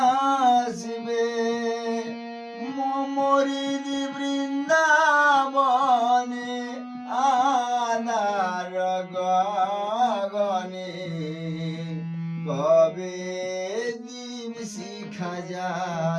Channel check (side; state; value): both; identical; correlation 1.00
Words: মমরিদি বৃন্দাবনে আনার গগনে? কবে দীপ শিখা